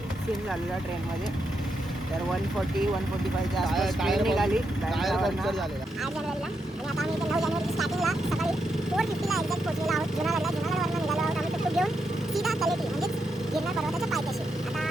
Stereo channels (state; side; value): normal; both; correlation 0.83